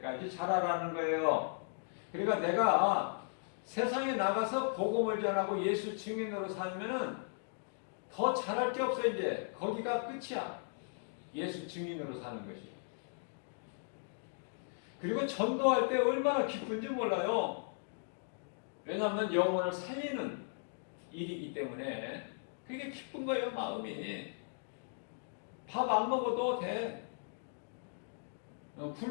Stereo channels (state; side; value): silent; right; digital silence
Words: 자라라는 거예요. 그러니까 내가 세상에 나가서 복음을 전하고 예수 증인으로 살면은 더 잘할 게 없어. 이제 거기가 끝이야. 예수 증인으로 사는 것이. 그리고 전도할 때 얼마나 기쁜지 몰라요. 왜냐하면 영혼을 살리는 일이기 때문에 그게 기쁜 거예요. 마음이. 밥 안 먹어도 돼.